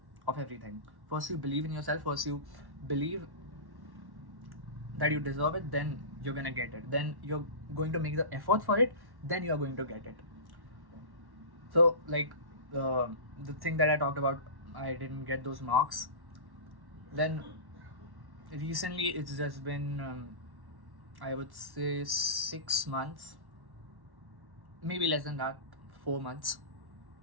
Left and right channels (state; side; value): late; left; 1.1 ms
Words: of everything. First you believe in yourself, first you believe that you deserve it, then you're gonna get it, then you're going to make the effort for it, then you're going to get it. So like the thing that I talked about, I didn't get those marks. Then recently it's just been I would say 6 months, maybe less than that, 4 months.